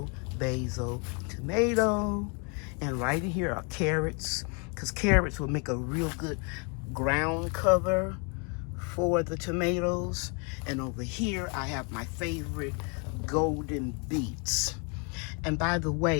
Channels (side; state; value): right; quieter; 35.2 dB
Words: basil, tomato. And right in here are carrots, because carrots will make a real good ground cover for the tomatoes. And over here I have my favorite golden beets. And by the